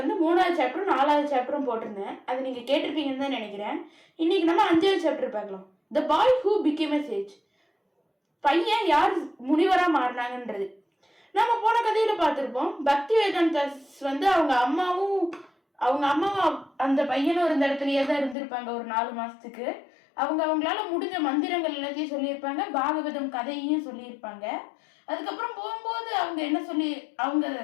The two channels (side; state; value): right; drops out; at 18.4 s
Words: 3வது சாப்டரும் 4வது சாப்டரும் போட்டிருந்தேன். அது நீங்கள் கேட்டிருப்பீங்கன்னு தான் நினைக்கிறேன். இன்னைக்கு நம்ம 5வது சாப்டர் பார்க்கலாம். The boy who became a sage. பையன் யார் முனிவராக மாறினாங்கன்றது. நம்ம போன கதையில் பார்த்துருப்போம். பக்தி வேதாந்தாஸ் வந்து அவங்க அம்மாவும் அந்த பையனும் இருந்த இடத்துலயே தான் இருந்திருப்பாங்க ஒரு 4 மாசத்துக்கு. அவங்களால முடிஞ்ச மந்திரங்கள் எல்லாத்தையும் சொல்லியிருப்பாங்க, பாகவதம் கதையையும் சொல்லியிருப்பாங்க. அதுக்கப்புறம் போகும்போது அவங்க என்ன சொல்லி